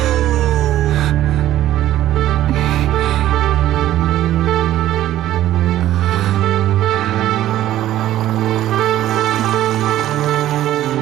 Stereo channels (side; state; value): left; quieter; 13.4 dB